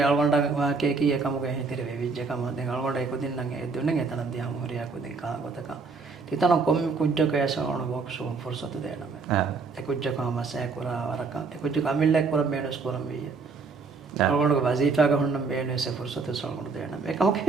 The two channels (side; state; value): left; quieter; 4.5 dB